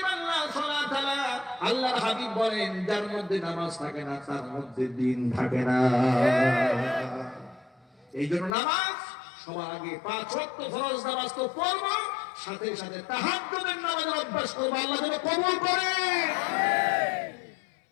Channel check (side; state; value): right; drops out; at 8.6 s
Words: লা সালাতা লা। আল্লাহর হাবিব বলেন, যার মধ্যে নামাজ থাকে না তার মধ্যে দ্বীন থাকে না। এই জন্য নামাজ সবার আগে 5 ওয়াক্ত ফরজ নামাজ তো পড়ব, সাথে সাথে তাহাজ্জুদের নামাজের অভ্যাস করব। আল্লাহ যেন কবুল করে।